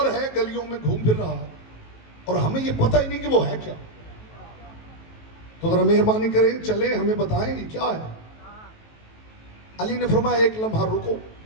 ہے گلیوں میں گھوم پھر رہا ہے اور ہمیں یہ پتہ ہی نہیں کہ وہ ہے کیا. تو ذرا مہربانی کریں، چلیں ہمیں بتائیں یہ کیا ہے. علی نے فرمایا ایک لمحہ رکو،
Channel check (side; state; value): right; late; 18 ms